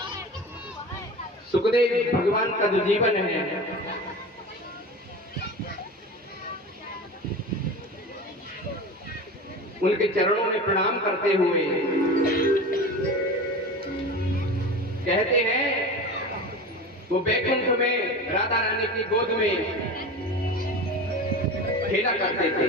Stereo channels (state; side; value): normal; both; correlation 0.31